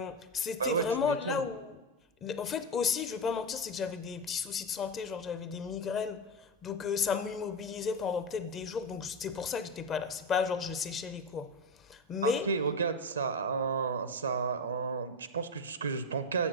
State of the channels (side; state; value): both; normal; correlation 0.15